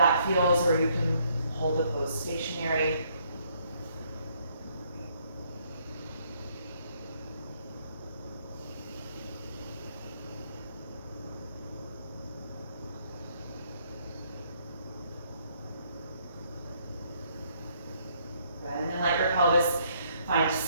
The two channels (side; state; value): both; inverted; correlation -0.68